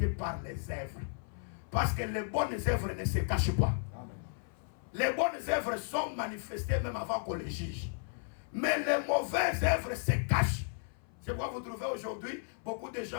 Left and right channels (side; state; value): right; silent; 55 dB below the other